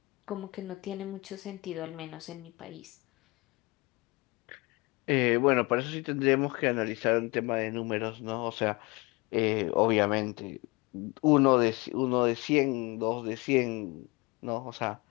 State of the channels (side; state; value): right; quieter; 25.0 dB